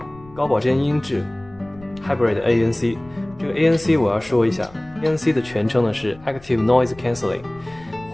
高保真音质 Hybrid ANC， 这个 ANC 我要说一下， ANC 的全称呢是 Active Noise Cancelling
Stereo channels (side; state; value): left; noise; rumble, 23 dB below the sound